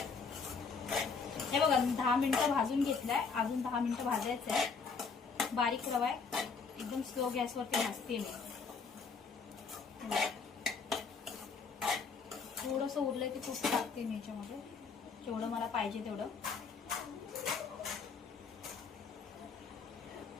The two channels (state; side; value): quieter; right; 5.2 dB